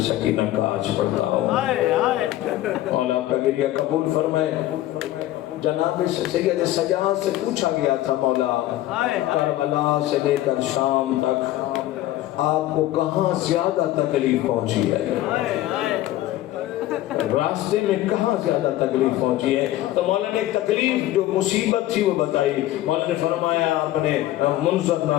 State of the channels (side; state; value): right; quieter; 14.8 dB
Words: سکینہ کا آج پڑھتا ہوں۔ مولا آپ کا گریہ قبول فرمائے۔ جناب سید سجاد سے پوچھا گیا تھا مولا کربلا سے لے کر شام تک آپ کو کہاں زیادہ تکلیف پہنچی ہے، راستے میں کہاں زیادہ تکلیف پہنچی ہے؟ تو مولا نے ایک تکلیف جو مصیبت تھی وہ بتائی۔ مولا نے فرمایا، اپنے منظر